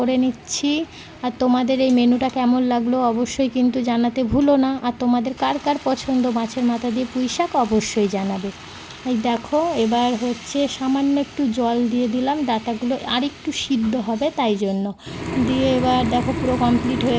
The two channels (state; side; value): identical; both; correlation 1.00